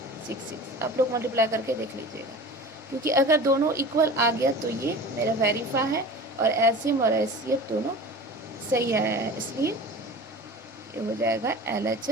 आप लोग मल्टीप्लाई करके देख लीजिएगा, क्योंकि अगर दोनों इक्वल आ गया तो ये मेरा वेरीफाई है और एलसीएम और एचसीएफ दोनों सही आया है, इसलिए ये हो जाएगा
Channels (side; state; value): both; normal; correlation 0.37